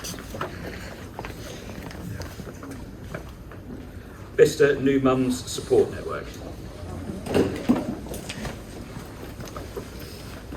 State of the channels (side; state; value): both; identical; correlation 1.00